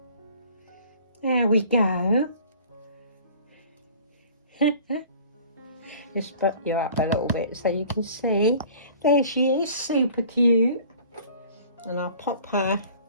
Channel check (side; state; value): both; inverted; correlation -0.48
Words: There we go. Just put you up a little bit so you can see. There she is, super cute. And I'll pop her